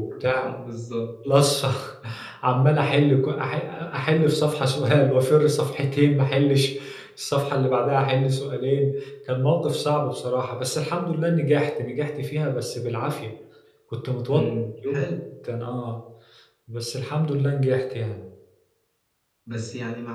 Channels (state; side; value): identical; both; correlation 1.00